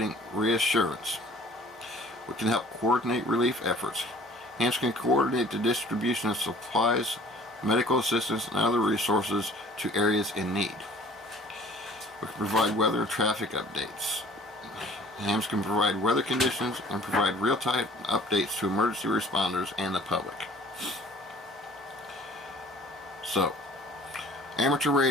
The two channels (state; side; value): normal; both; correlation 0.51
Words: reassurance. We can help coordinate relief efforts. Hams can coordinate the distribution of supplies, medical assistance, and other resources to areas in need. We can provide weather and traffic updates. Hams can provide weather conditions and provide real-time updates to emergency responders and the public. So, amateur